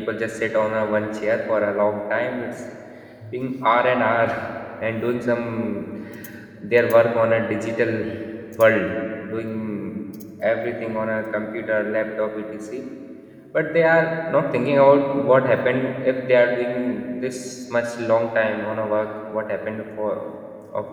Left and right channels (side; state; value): both; identical; correlation 1.00